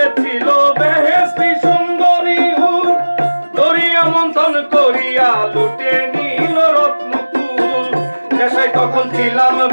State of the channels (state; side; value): inverted; both; correlation -1.00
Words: বেহেশতি সুন্দরী হুর, দরিয়া মন্থন করিয়া লুটে নিল রত্নকুল। নেশায় তখন ছিলাম